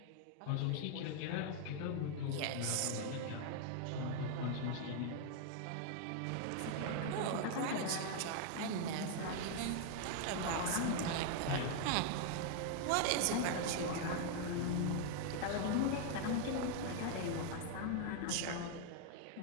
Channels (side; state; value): both; different; correlation 0.00